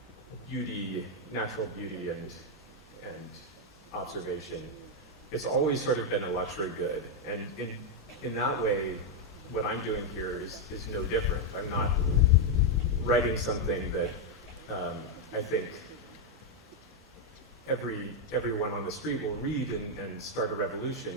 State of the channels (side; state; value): both; normal; correlation 0.01